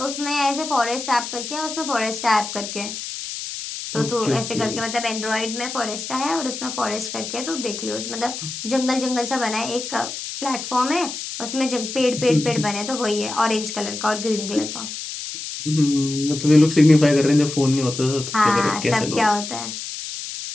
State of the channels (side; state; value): left; noise; hiss, 7 dB below the sound